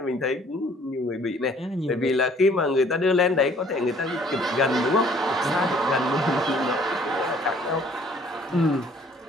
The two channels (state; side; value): normal; both; correlation 0.58